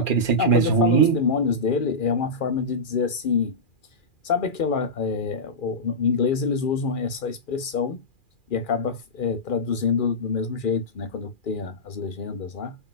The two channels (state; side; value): late; right; 2.4 ms